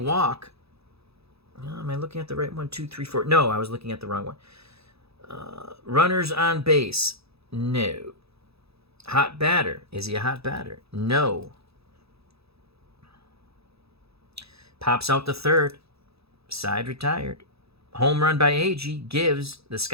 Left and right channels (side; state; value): left; late; 0.78 ms